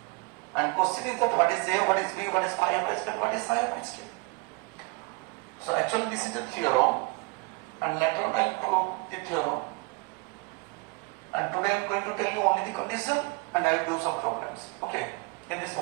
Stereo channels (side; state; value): left; quieter; 28.0 dB